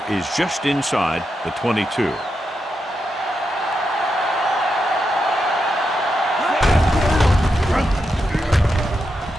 is just inside the 22.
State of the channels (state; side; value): normal; both; correlation 0.85